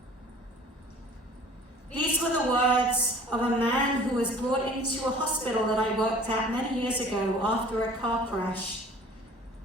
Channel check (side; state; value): both; normal; correlation 0.48